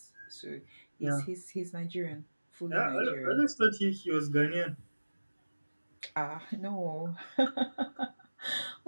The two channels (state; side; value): inverted; both; correlation -1.00